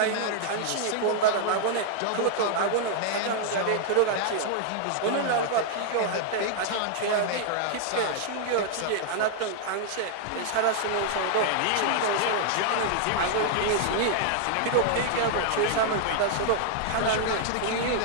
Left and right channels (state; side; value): different; both; correlation -0.01